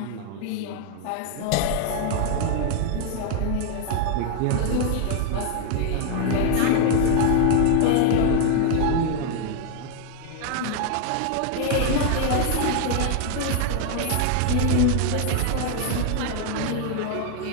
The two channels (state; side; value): different; both; correlation 0.00